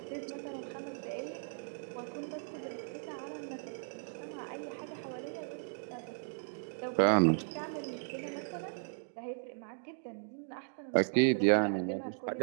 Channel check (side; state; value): left; silent; digital silence